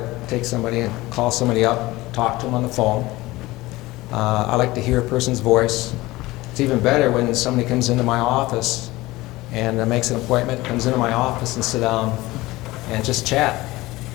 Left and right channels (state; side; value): quieter; right; 19.4 dB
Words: take somebody and call somebody up, talk to them on the phone. I like to hear a person's voice. It's even better when somebody comes into my office and makes an appointment, comes into my office and sit down and just chat.